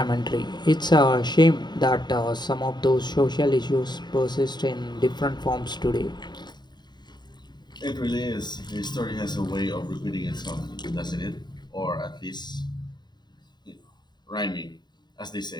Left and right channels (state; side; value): late; right; 0.21 ms